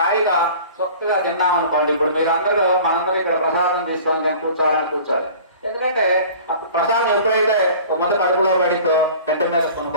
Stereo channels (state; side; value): inverted; both; correlation -0.44